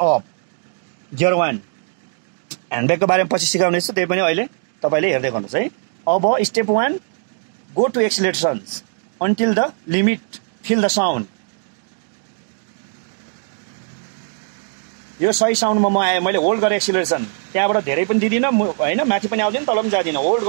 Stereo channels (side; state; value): left; silent; 62 dB below the other